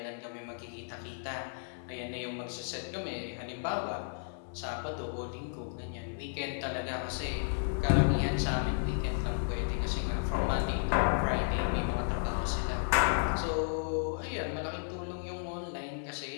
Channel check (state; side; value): silent; right; 55 dB below the other